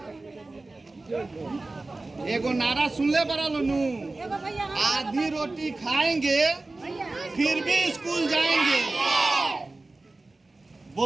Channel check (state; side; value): quieter; left; 3.2 dB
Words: एगो नारा सुनले बड़ा नु, आधी रोटी खाएंगे फिर भी स्कूल जाएंगे।